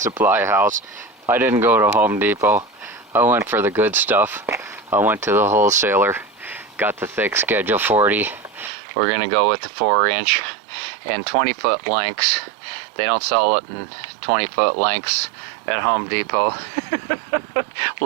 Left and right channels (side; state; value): left; drops out; at 8.7 s